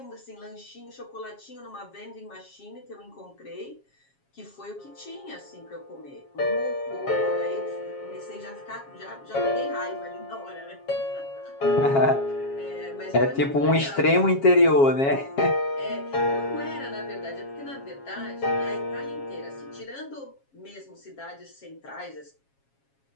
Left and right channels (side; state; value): right; late; 7.3 ms